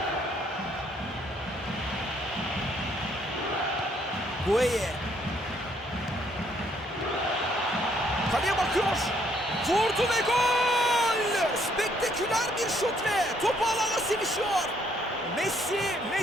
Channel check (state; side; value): normal; both; correlation 0.68